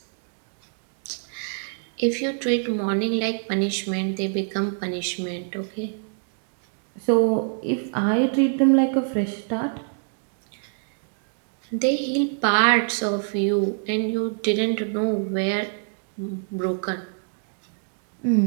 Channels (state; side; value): silent; left; digital silence